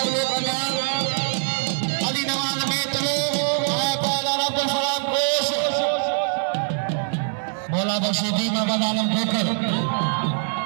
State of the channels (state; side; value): silent; left; digital silence